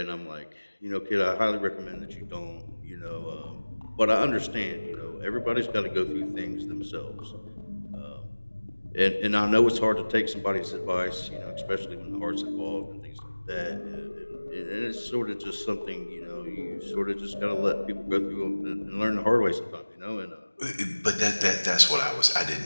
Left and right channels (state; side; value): inverted; both; correlation -1.00